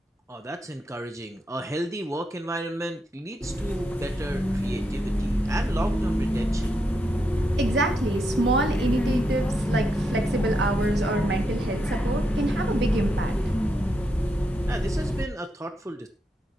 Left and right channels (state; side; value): normal; both; correlation 0.82